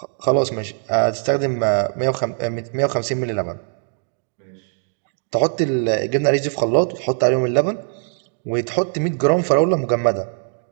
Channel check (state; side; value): silent; left; 64 dB below the other